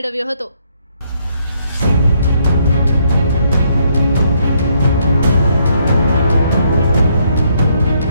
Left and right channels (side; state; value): both; inverted; correlation -0.71